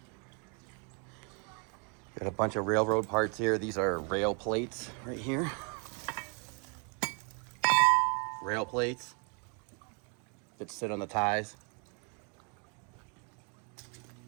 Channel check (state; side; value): quieter; left; 36.9 dB